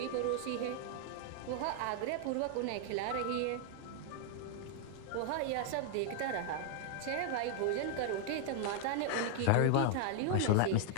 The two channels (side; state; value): both; different; correlation 0.00